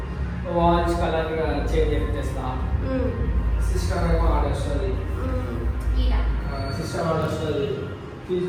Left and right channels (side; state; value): both; identical; correlation 1.00